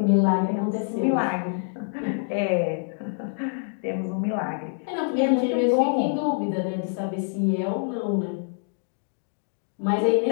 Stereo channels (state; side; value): silent; right; digital silence